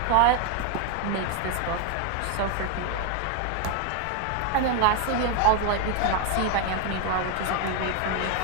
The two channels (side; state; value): both; different; correlation 0.01